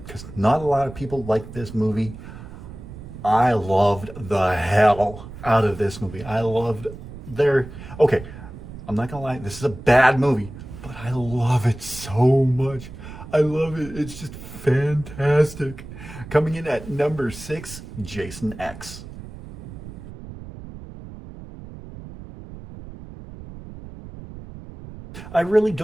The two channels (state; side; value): noise; right; rumble, 14 dB below the sound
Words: not a lot of people like this movie. I loved the hell out of this movie. I loved okay, I'm not gonna lie, this is a bad movie, but I love it so much. I love it. It's just fantastic. Coming in at number 6, Jason X. I really